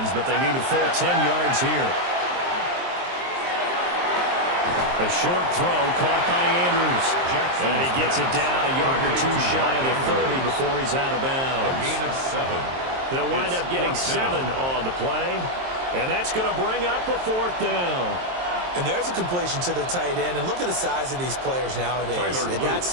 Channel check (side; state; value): left; late; 23 ms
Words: but they need a full 10 yards here. A short throw caught by Andrews. And he gets it down a yard or 2 shy of the 30 before he's out of bounds. A gain of 7. They'll wind up getting 7 on the play. And that's going to bring up a 4th down. And there's a completion to the tight end. And look at the size of these players nowadays. At that